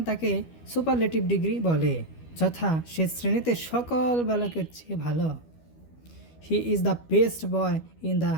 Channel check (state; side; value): late; right; 12 ms